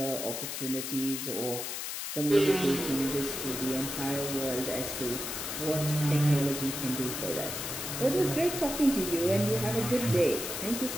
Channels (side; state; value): left; noise; hiss, 5 dB below the sound